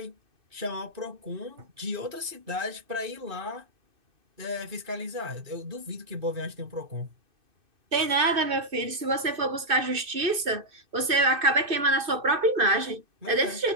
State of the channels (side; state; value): left; late; 2.6 ms